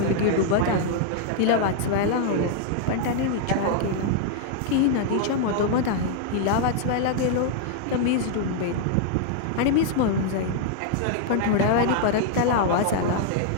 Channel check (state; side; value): different; both; correlation -0.01